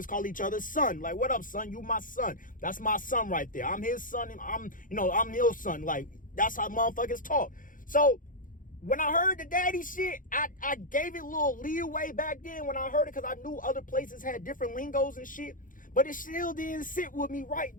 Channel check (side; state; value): right; late; 0.39 ms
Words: call each other son. Like, what up, son? You my son. That's my son right there. I'm his son. And I'm your son. Like, that's how motherfuckers talk. So when I heard the daddy shit, I gave it a little leeway back then when I heard it, because I knew other places had different lingos and shit. But it still didn't sit with me right,